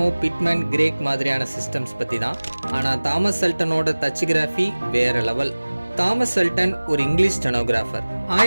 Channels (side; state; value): both; inverted; correlation -1.00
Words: பிட்மேன், கிரேக் மாதிரியான சிஸ்டம்ஸ் பற்றி தான். ஆனால் தாமஸ் சல்டனோட தச்சிகிராஃபி வேற லெவல். தாமஸ் சல்டன் ஒரு இங்கிலீஷ் ஸ்டெனோகிராஃபர்.